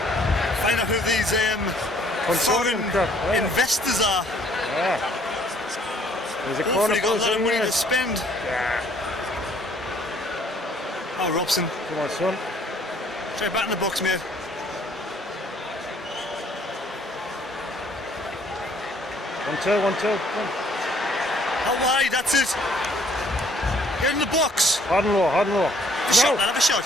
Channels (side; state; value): both; normal; correlation 0.61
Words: Find out who these foreign investors are. Yeah. There's a Hopefully corner got a lot of money there. to spend. Yeah. Oh, Robson. Come on, son. Try back in the box, mate. 1-2, 1-2. How wide? That's it. Get in the box. Hard and low, hard and low. Have a shot, man, have a shot.